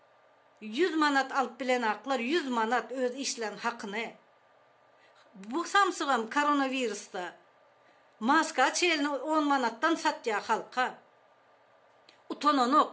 100 manat alıp bilenaklar 100 manat öz işlen hakkını. Bu samsıgam koronavirüste maska çelini 10 manattan satya halka.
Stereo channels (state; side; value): identical; both; correlation 1.00